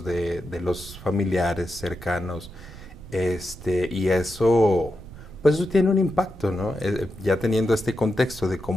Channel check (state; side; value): noise; right; rumble, 16 dB below the sound